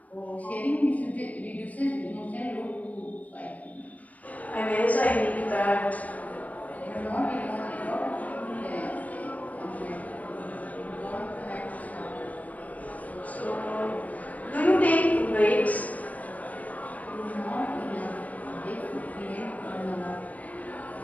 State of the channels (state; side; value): late; right; 0.072 ms